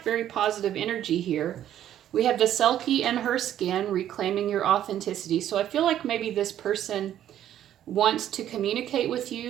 very positive energy here. We have the Selkie and her skin, reclaiming your authenticity. So I feel like maybe this person wants to communicate with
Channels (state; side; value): quieter; left; 11.3 dB